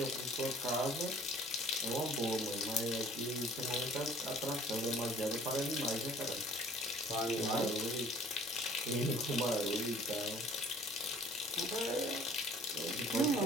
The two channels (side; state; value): both; normal; correlation 0.53